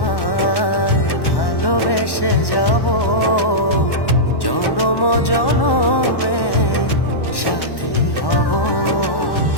ভালোবেসে যাব জনম জনমে সাথী হব।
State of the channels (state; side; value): late; right; 1.1 ms